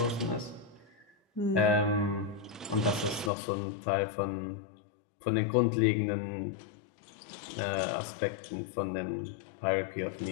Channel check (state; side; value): drops out; right; at 3.3 s